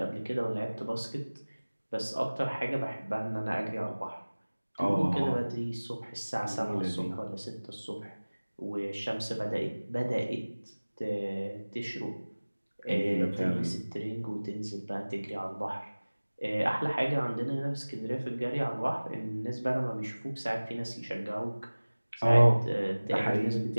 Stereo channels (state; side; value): inverted; both; correlation -1.00